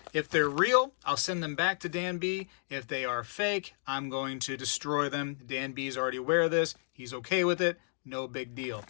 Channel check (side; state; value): right; silent; digital silence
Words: if they're real, I'll send them back to Dan B. If they are fake, I'm going to destroy them. Dan B is already aware of this. He's okay with it. No big deal.